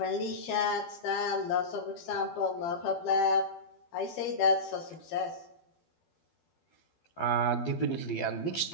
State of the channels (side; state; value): right; late; 12 ms